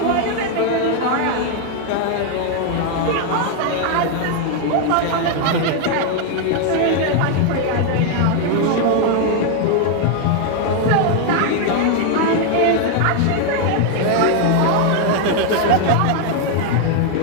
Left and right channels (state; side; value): different; both; correlation 0.00